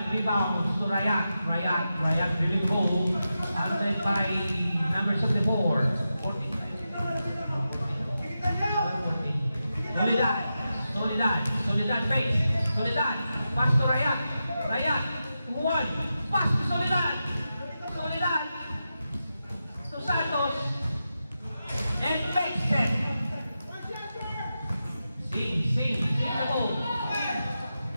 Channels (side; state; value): both; inverted; correlation -0.90